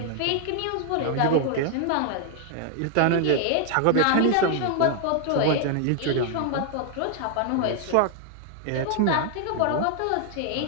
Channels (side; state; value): both; different; correlation 0.00